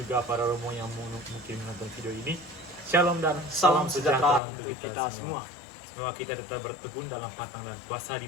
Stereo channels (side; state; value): right; drops out; at 4.4 s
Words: para Romo yang mungkin menonton video ini. Shalom dan Salam sejahtera untuk kita semua. Semoga kita tetap bertekun dalam patang dan puasa di